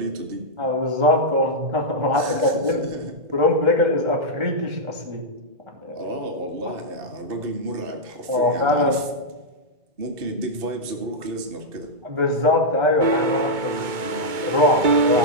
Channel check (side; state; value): left; late; 2.2 ms